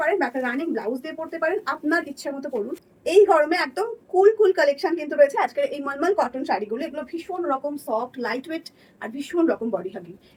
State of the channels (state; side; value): identical; both; correlation 1.00